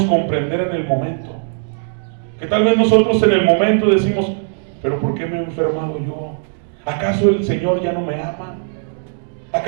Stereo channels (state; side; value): silent; left; digital silence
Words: comprender en el momento. Que tal vez nosotros en el momento decimos: pero ¿por qué me he enfermado yo? ¿Acaso el Señor ya no me ama?